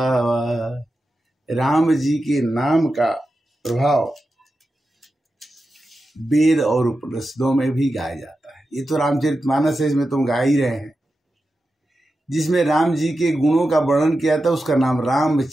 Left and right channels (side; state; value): both; normal; correlation 0.91